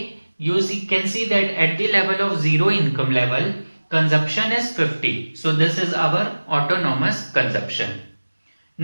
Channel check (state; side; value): inverted; both; correlation -1.00